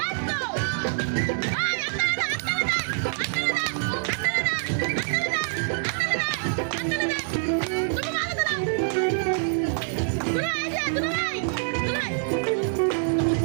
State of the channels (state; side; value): silent; left; digital silence